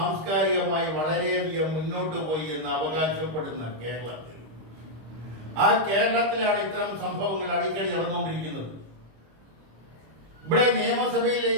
വളരെയധികം മുന്നോട്ട് പോയി എന്ന് അവകാശപ്പെടുന്ന കേരളത്തിൽ, ആ കേരളത്തിലാണ് ഇത്തരം സംഭവങ്ങൾ അടിക്കടി നടന്നുകൊണ്ടിരിക്കുന്നത്. ഇവിടെ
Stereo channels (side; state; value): left; late; 25 ms